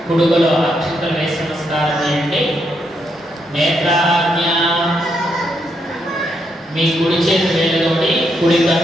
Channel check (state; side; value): normal; both; correlation 0.78